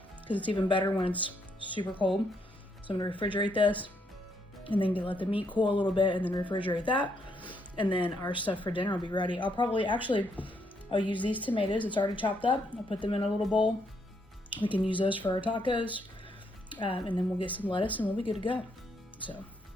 because it's even better when it's super cold. So I'm gonna refrigerate this and then let the meat cool a little bit and then refrigerate that. And then our stuff for dinner will be ready. I'll use these tomatoes. It's already chopped up. I'll put them in a little bowl. We can use those for our tacos. And then we'll get some lettuce and we'll be good to go. So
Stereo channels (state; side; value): normal; both; correlation 0.74